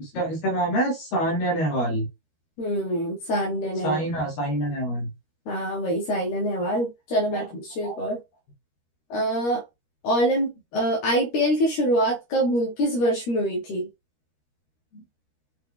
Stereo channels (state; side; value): late; right; 13 ms